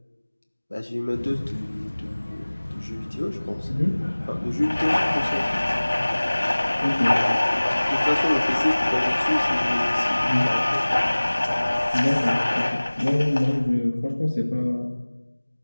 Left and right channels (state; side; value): inverted; both; correlation -1.00